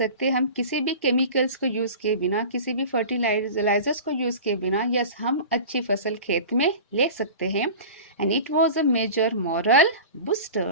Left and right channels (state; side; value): inverted; both; correlation -0.36